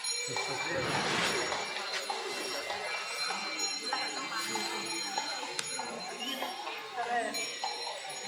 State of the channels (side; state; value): both; identical; correlation 1.00